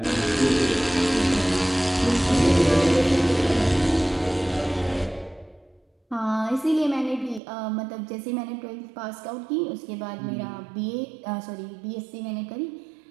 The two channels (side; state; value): left; drops out; at 7.4 s